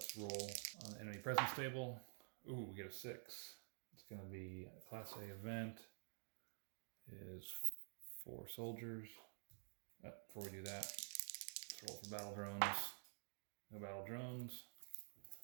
roll on the enemy presence table. Ooh, we get a 6. It's going to be a Class A event. Is 4 soldiers. Before we do that, let's roll for battle drones. No battle drones.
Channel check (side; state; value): left; silent; digital silence